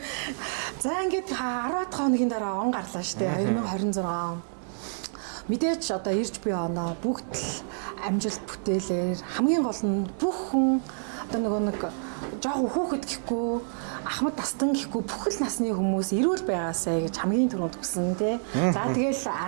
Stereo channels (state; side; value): silent; left; digital silence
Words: За ингээд 10 хоногийн дараа он гарлаа штэ 2026. Мэдээж одоо ирж буй оноо бүгд л амжилт бүтээлээр хамгийн гол нь бүх хүн одоо нэг жоохон хүүхэд гэхгүй ахмад тастан гэхгүй бүхэл насны хүмүүс эрүүл байгаасай гэж хамгийн түрүүнд хүсэн тий. За тэгэл